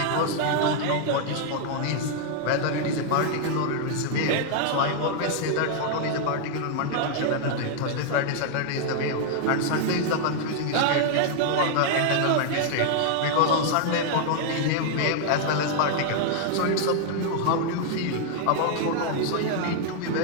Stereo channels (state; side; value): different; both; correlation -0.01